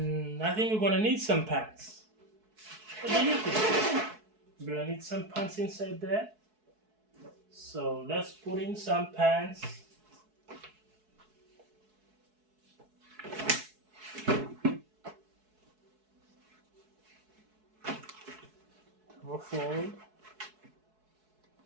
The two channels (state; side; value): late; left; 4.6 ms